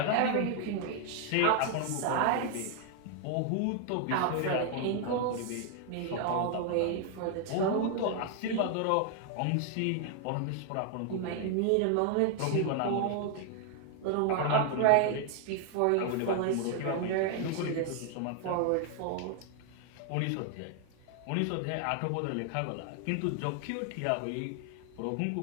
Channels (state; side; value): different; both; correlation 0.00